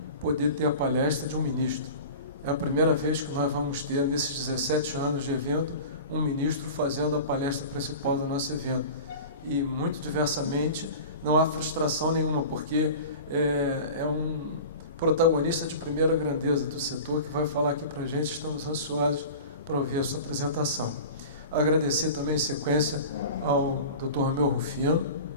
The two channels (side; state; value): both; inverted; correlation -0.36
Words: poder ter a palestra de um ministro. É a primeira vez que nós vamos ter, nesses 17 anos de evento, um ministro fazendo a palestra principal do nosso evento. E, muito diversamente, não há frustração nenhuma, porque é um protagonista de primeira grandeza do setor que vai falar aqui para a gente. Estamos ansiosos para ouvir a sua apresentação. Agradecer também em sequência ao Dr. Romeu Rufino,